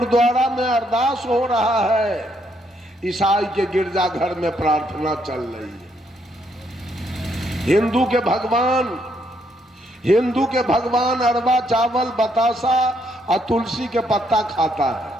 में अरदास हो रहा है, ईसाई के गिरजा घर में प्रार्थना चल रही है। हिंदू के भगवान अरवा चावल बतासा और तुलसी के पत्ता खाता है।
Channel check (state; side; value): normal; both; correlation 0.73